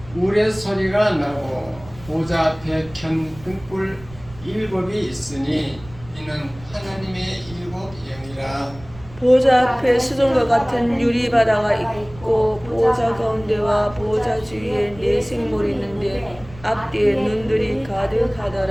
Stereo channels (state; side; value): noise; right; rumble, 19 dB below the sound